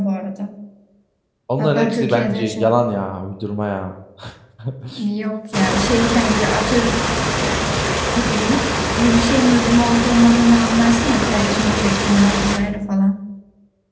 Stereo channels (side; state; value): both; identical; correlation 1.00